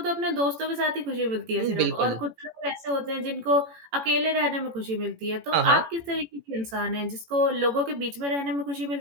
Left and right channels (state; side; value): late; left; 18 ms